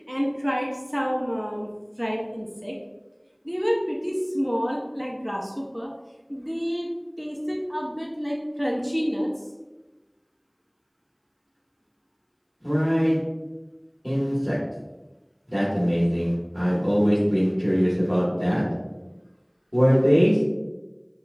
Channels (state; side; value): identical; both; correlation 1.00